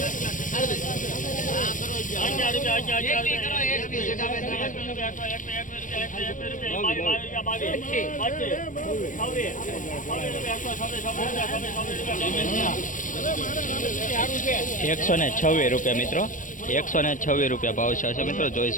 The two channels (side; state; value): right; late; 0.38 ms